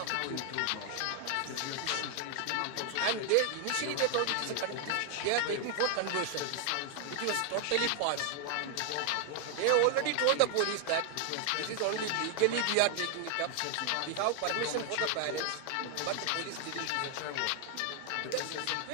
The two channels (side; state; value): both; different; correlation 0.00